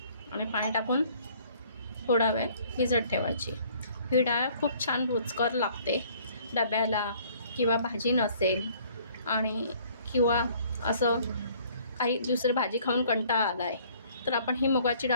आणि पाणी टाकून थोडा वेळ भिजत ठेवायची. ही डाळ खूप छान रुचकर लागते. डब्याला किंवा भाजी नसेल आणि किंवा असं काही दुसरी भाजी खाऊन कंटाळा आला आहे तर आपण ही मुगाची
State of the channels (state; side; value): inverted; both; correlation -0.58